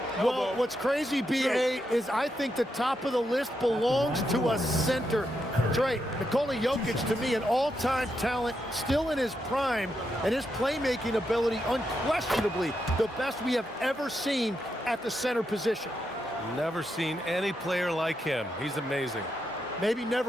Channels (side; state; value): both; normal; correlation 0.83